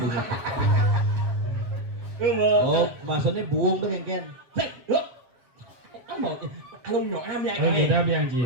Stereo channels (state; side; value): late; left; 7.7 ms